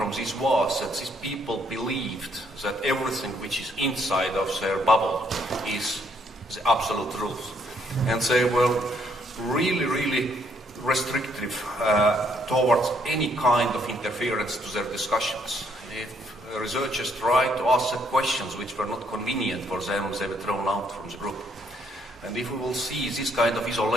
this was that these people believed that everything which is inside of their bubble is the absolute truth. And they were really, really restrictive towards any kind of interference to their discussions. If researchers tried to ask them questions which were not convenient for them, they were thrown out from the group. And if we will see these kind of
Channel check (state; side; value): normal; both; correlation 0.69